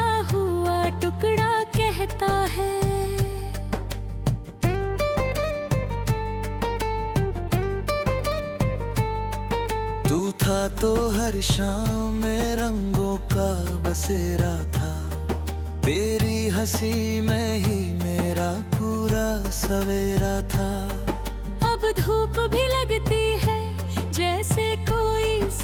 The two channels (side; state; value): both; identical; correlation 1.00